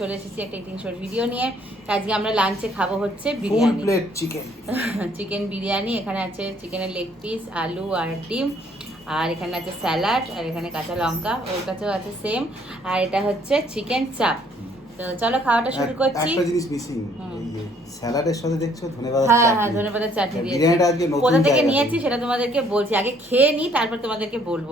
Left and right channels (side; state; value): both; normal; correlation 0.63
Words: এসেছি একটা ইটিং শোর ভিডিও নিয়ে। আজকে আমরা লাঞ্চে খাবো হচ্ছে full biryani, plate chicken. Chicken biryani. এখানে আছে চিকেনের লেগ পিস, আলু আর ডিম, আর এখানে আছে স্যালাড, আর এখানে কাঁচা লঙ্কা, ওর কাছেও আছে সেম। আর এটা হচ্ছে চিকেন চাপ। তো চলো খাওয়াটা শুরু করছি। একটা জিনিস মিসিং, এই যে স্যালাডের সাথে দেখছো ধনেপাতার হ্যাঁ চাটনি। হ্যাঁ, ধনেপাতার চাটনি দিয়েছি। বিরিয়ানিটা আজকে নতুন কোথা থেকে জায়গা নিয়েছি সেটা তোমাদেরকে বলছি, আগে খেয়ে নিই তারপর তোমাদেরকে